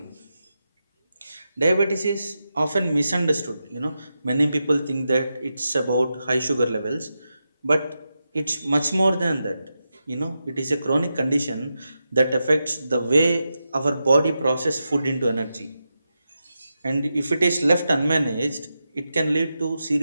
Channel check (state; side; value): inverted; both; correlation -0.89